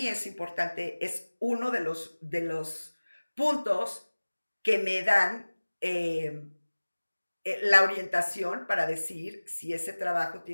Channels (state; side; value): inverted; both; correlation -1.00